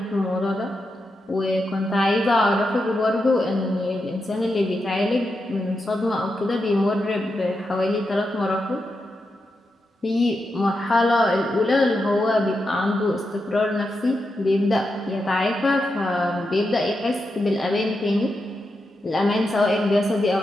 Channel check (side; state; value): both; normal; correlation 0.87